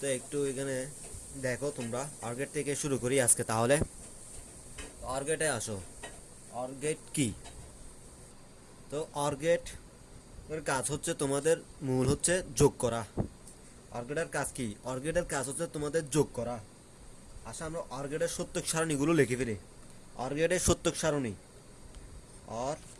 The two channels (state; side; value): identical; both; correlation 1.00